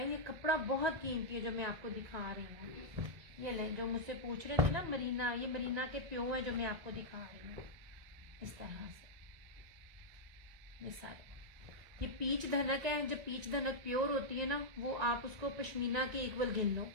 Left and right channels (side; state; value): left; late; 1.9 ms